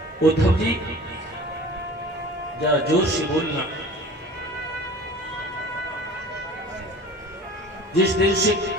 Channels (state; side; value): normal; both; correlation 0.42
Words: उद्धव जी जरा जोर से बोलना। जिस दिन से